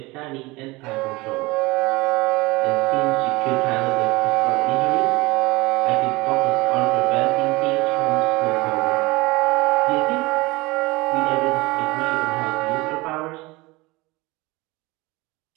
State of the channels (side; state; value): left; quieter; 22.6 dB